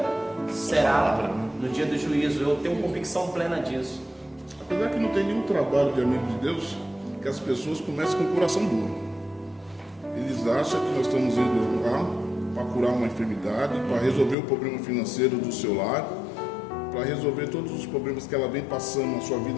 será no dia do juízo. Eu tenho convicção plena disso. Apesar que não tem nenhum trabalho de amigo de Deus que as pessoas comecem com o coração duro. Eles acham que nós estamos indo lá para curar uma enfermidade, para resolver o problema financeiro do seu lar, para resolver todos os problemas que ela vem passando na sua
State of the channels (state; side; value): drops out; right; at 14.4 s